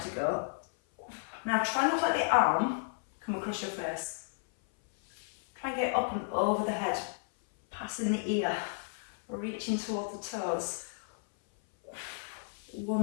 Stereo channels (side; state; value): right; silent; 56 dB below the other